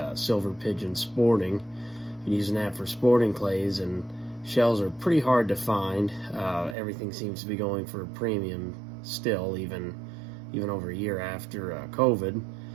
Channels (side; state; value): left; drops out; at 6.8 s